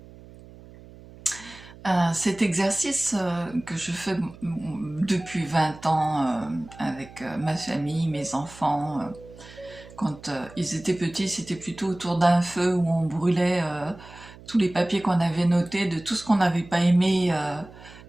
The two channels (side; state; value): right; noise; hum, 20 dB below the sound